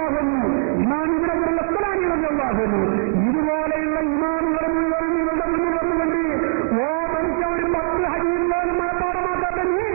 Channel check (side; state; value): left; silent; digital silence